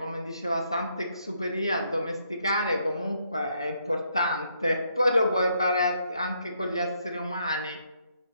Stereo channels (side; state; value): both; inverted; correlation -0.73